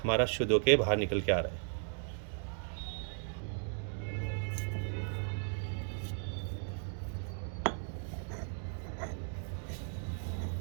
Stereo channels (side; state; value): left; silent; 54 dB below the other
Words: हमारा शुद्ध होकर बाहर निकल के आ रहा है।